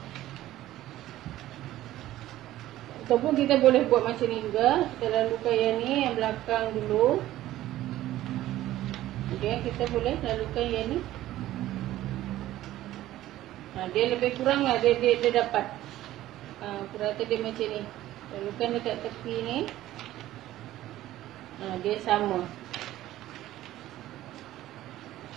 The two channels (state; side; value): quieter; left; 14.6 dB